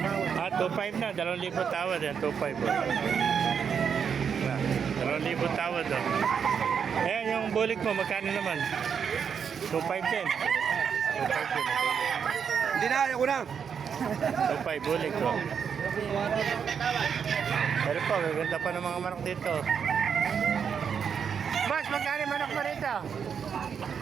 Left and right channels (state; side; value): quieter; left; 7.0 dB